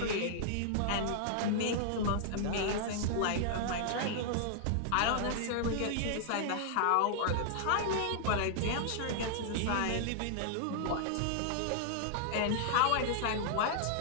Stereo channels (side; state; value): both; different; correlation -0.01